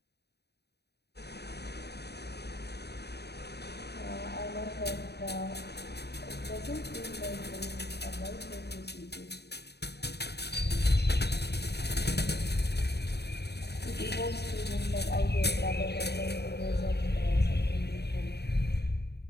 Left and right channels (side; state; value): right; late; 0.48 ms